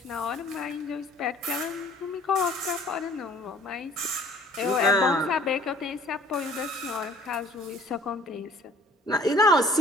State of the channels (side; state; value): both; normal; correlation 0.54